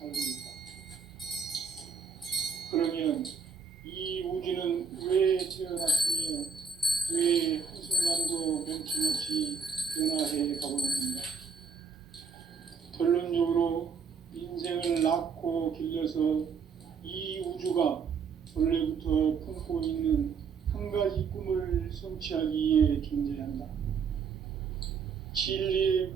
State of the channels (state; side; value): quieter; left; 5.8 dB